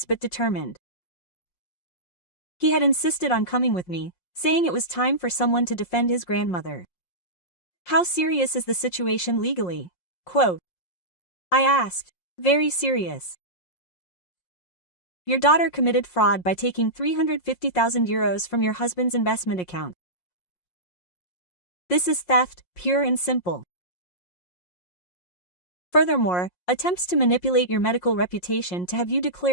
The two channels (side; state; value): right; late; 5.6 ms